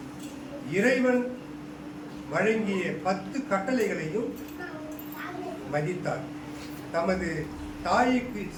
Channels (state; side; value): identical; both; correlation 1.00